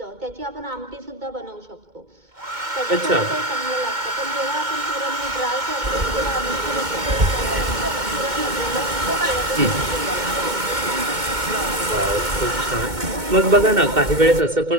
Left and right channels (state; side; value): late; left; 2.2 ms